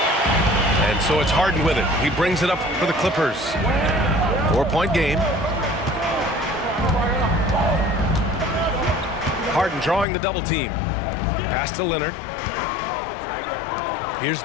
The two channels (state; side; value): drops out; right; at 10.1 s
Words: And so it's Harden with it. He brings it up for the Clippers. 4-point game. Harden drawing the double team. Pass to Leonard. Here's